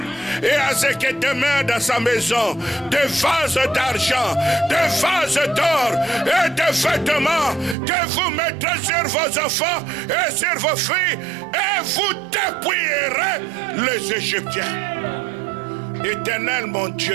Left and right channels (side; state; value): left; drops out; at 7.8 s